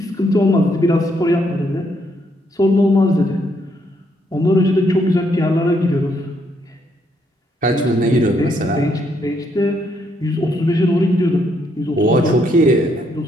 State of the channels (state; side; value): normal; both; correlation 0.73